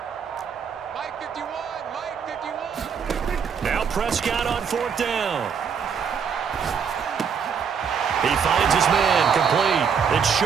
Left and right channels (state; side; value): quieter; left; 6.8 dB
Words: Now Prescott on fourth down. He finds his man, complete. It's